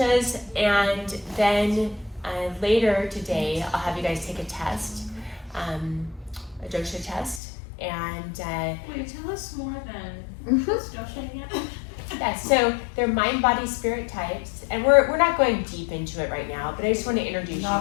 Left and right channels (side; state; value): right; drops out; at 7.4 s